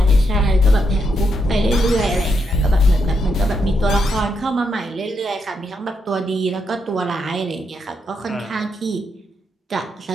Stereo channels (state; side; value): normal; both; correlation 0.81